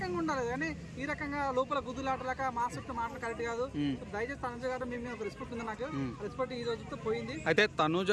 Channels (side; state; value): both; identical; correlation 1.00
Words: ఉండాలి, కానీ ఈ రకంగా లోపల గుద్దులాటలాక మాస్టర్ మాటలు కరెక్ట్ కాదు. దయచేసి తనుజ గారు మీ మీద రెస్పెక్ట్ ఉంది, నాకు రెస్పెక్ట్ ఈ రోజుతో పోయింది. అయితే తనుజ